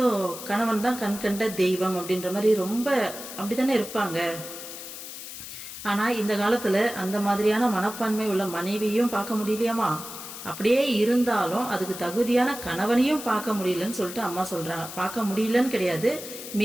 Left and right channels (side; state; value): left; noise; hiss, 11 dB below the sound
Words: கணவன் தான் கண் கண்ட தெய்வம் அப்படின்ற மாதிரி ரொம்ப அப்படி தானே இருப்பாங்க. ஆனால் இந்த காலத்தில் அந்த மாதிரியான மனப்பான்மை உள்ள மனைவியும் பார்க்க முடியலையாமா. அப்படியே இருந்தாலும் அதுக்கு தகுதியான கணவனையும் பார்க்க முடியலன்னு சொல்லிட்டு அம்மா சொல்கிறாங்க. பார்க்க முடியலன்னு கிடையாது,